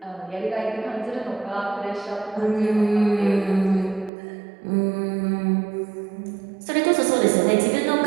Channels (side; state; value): left; drops out; at 4.1 s